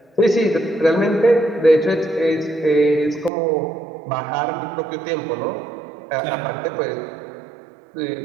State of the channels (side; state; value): left; drops out; at 3.3 s